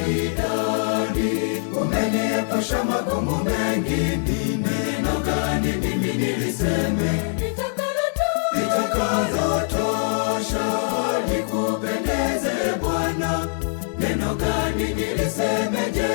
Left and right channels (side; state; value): right; silent; digital silence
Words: idadi. Umeniepusha magumu mengi, ni neno gani mimi niliseme litakalotosha likupendeze Bwana? Neno gani niliseme